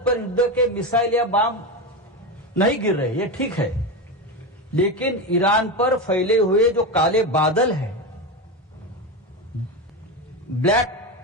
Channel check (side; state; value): both; normal; correlation 0.17